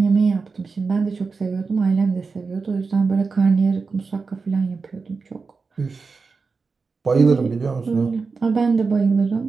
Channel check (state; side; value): quieter; left; 4.6 dB